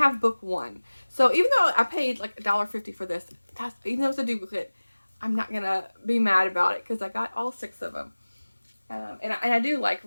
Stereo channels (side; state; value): both; inverted; correlation -1.00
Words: book 1. So even though I paid like $1.50 for this, even though it's a duplicate, I'm not gonna be mad about it because I got all 6 of them. And I do like